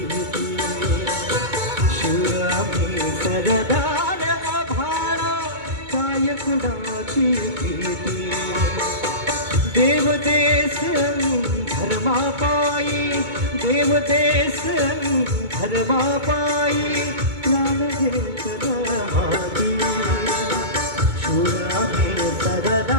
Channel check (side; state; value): left; late; 2.2 ms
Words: शिवरामी सरदार आभाळा काय कुणाची भीती देव देश धर्मापायी देव देश धर्मापायी प्राण घेतला हाती शिवरामी